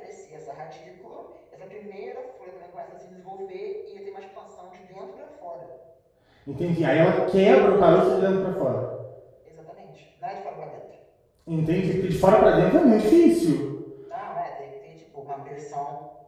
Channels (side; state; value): both; identical; correlation 1.00